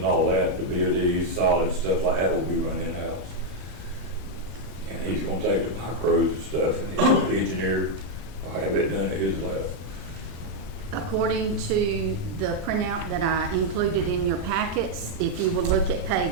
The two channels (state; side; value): late; left; 34 ms